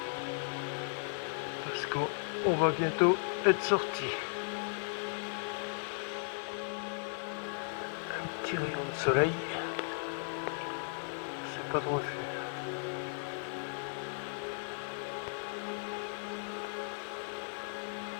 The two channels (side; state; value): right; silent; digital silence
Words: parce qu'on va bientôt être sorti. Un petit rayon de soleil, c'est pas de refus.